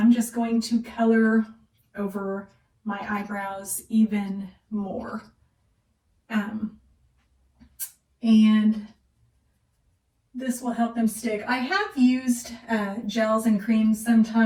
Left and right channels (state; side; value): identical; both; correlation 1.00